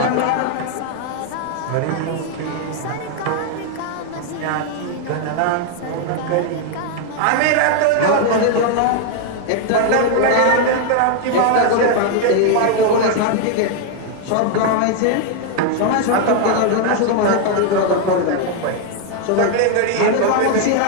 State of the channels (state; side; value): different; both; correlation 0.01